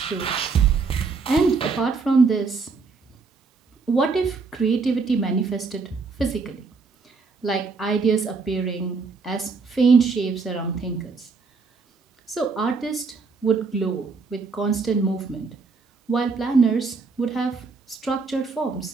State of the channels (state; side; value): quieter; left; 4.6 dB